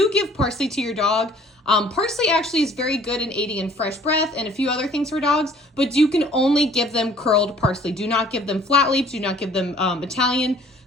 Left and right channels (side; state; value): both; normal; correlation 0.55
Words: give parsley to your dog, parsley actually is very good in aiding in fresh breath and a few other things for dogs, but you can only give them curled parsley. Do not give them flat leaves, do not give them Italian.